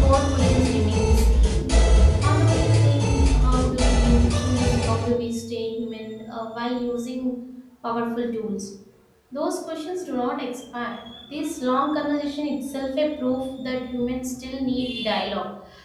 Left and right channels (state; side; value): identical; both; correlation 1.00